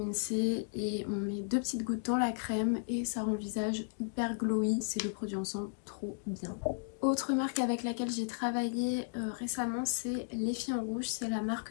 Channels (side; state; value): right; silent; digital silence